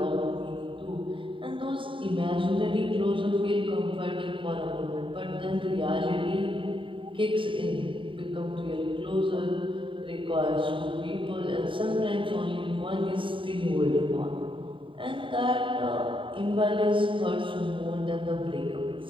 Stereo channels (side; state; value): left; late; 0.25 ms